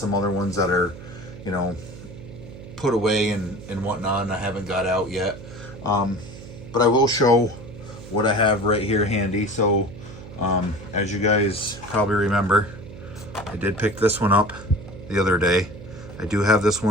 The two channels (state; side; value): noise; right; hum, 15 dB below the sound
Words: other ones that are, you know, put away and whatnot, and I haven't got out yet. But I will show what I have right here handy. So as you guys probably remember, I did pick this one up the other day. I do have this